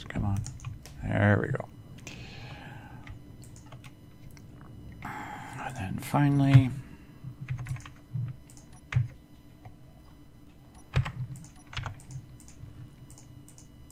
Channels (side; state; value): both; identical; correlation 1.00